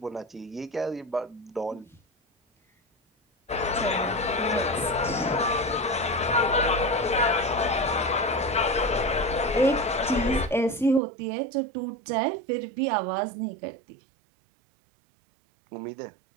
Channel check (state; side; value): drops out; left; at 11.0 s